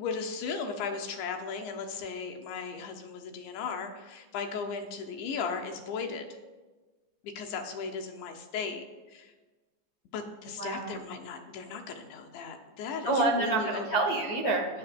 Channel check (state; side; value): late; right; 15 ms